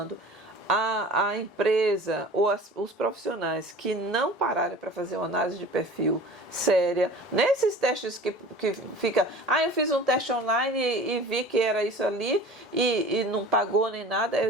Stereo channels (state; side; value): normal; both; correlation 0.41